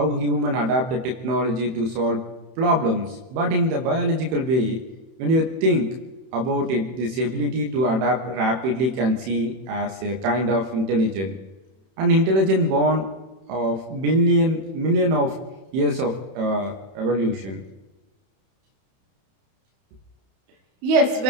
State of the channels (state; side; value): late; left; 31 ms